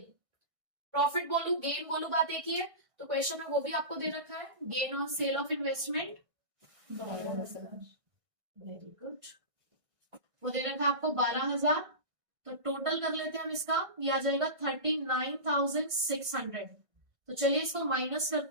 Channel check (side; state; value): left; late; 1.6 ms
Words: Profit बोलू गेन बोलू बात एक ही है, तो क्वेश्चन में वो भी आपको दे रखा है, gain on sale of investment. Very good. वो दे रखा है आपको 12,000। तो टोटल कर लेते हैं हम इसका, ये आ जाएगा 39,600। तो चलिए इसको माइनस